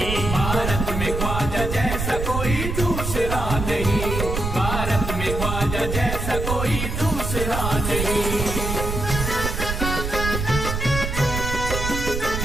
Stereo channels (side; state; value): right; noise; rumble, 3 dB below the sound